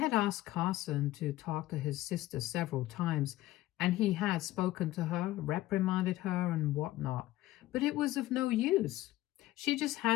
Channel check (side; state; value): right; quieter; 16.0 dB